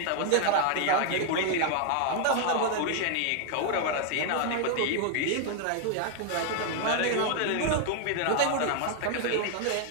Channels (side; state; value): both; different; correlation 0.00